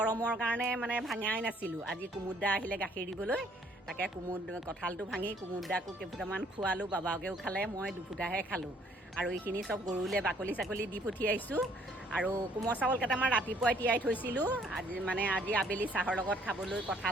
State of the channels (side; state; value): both; normal; correlation 0.63